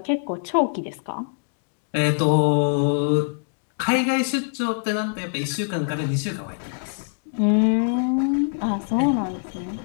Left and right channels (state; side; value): silent; right; digital silence